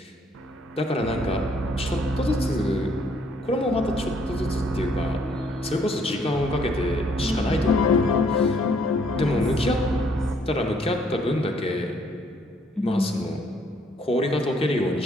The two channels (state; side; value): normal; both; correlation 0.66